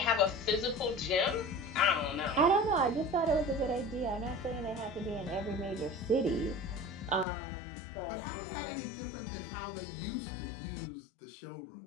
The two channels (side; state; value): right; drops out; at 7.2 s